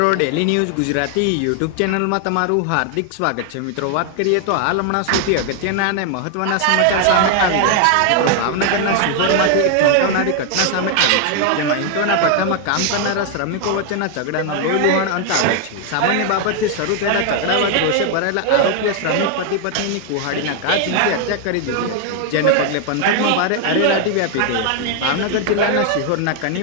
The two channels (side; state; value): both; different; correlation 0.00